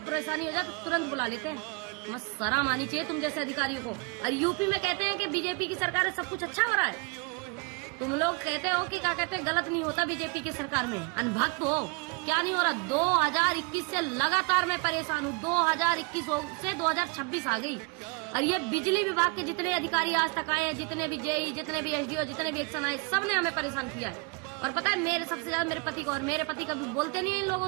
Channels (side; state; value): left; quieter; 30.8 dB